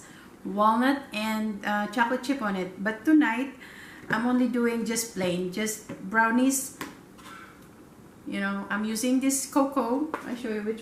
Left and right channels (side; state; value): both; identical; correlation 1.00